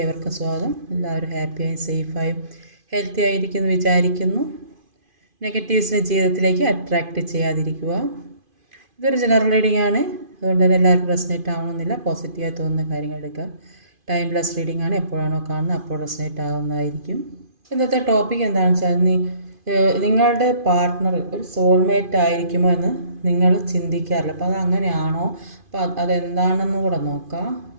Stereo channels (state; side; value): late; left; 2.5 ms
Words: ഏവർക്കും സ്വാഗതം. എല്ലാവരും ഹാപ്പിയായും സേഫായും ഹെൽത്തി ആയിരിക്കുന്നു വിചാരിക്കുന്നു. നെഗറ്റീവ്സിനെ ജീവിതത്തിലേക്ക് അട്രാക്റ്റ് ചെയ്യാതിരിക്കുക. ഇതൊരു ജനറൽ റീഡിംഗ് ആണ്, അതുകൊണ്ട് തന്നെ എല്ലാവർക്കും റെസനേറ്റ് ആവണമെന്നില്ല. പോസിറ്റീവായി തോന്നുന്ന കാര്യങ്ങൾ എടുക്കുക. ടൈംലെസ് റീഡിംഗ് ആണ്, എപ്പോഴാണോ കാണുന്നത് അപ്പോൾ റെസനേറ്റ് ആവുന്നതായിരിക്കും. ഇന്നത്തെ ടോപ്പിക് എന്താണെന്ന് വെച്ചാൽ, നിങ്ങളുടെ പാർട്ട്ണർ ഒരു സോൾമേറ്റ് ആയിരിക്കുമോ എന്ന് നിങ്ങൾ ചിന്തിക്കാറില്ല. അപ്പോൾ അത് അങ്ങനെയാണോ, അപ്പോൾ അതെന്താണെന്ന് കൂടെ നോക്കാം.